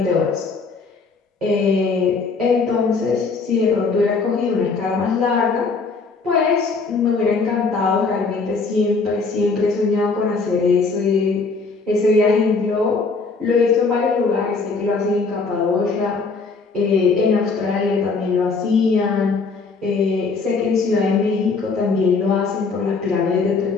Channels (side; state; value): right; quieter; 4.4 dB